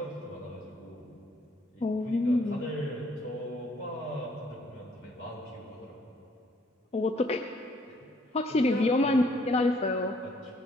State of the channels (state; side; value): normal; both; correlation 0.65